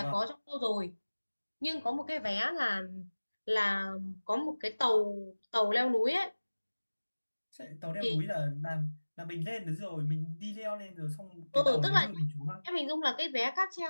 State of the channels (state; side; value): inverted; both; correlation -1.00